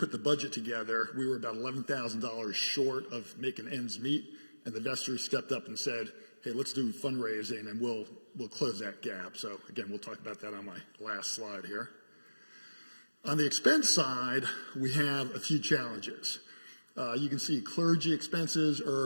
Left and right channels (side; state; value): both; inverted; correlation -1.00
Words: the budget together, we were about $11,000 short of making ends meet, and the Vestry stepped up and said, hey, let's do fundraising and we'll close that gap. So again, we'll talk about that on my last slide here. On the expense side, we have a few challenges. You can see clergy expenses